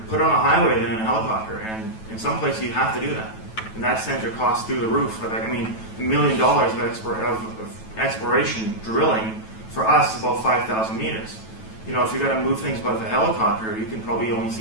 put it on a highway than in a helicopter. And in some places, you have to do that. And that sends your costs through the roof. I mean, $1 million of exploration drilling for us is about 5,000 meters. You know, if you're going to move things by the helicopter, you can probably only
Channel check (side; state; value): right; late; 9.2 ms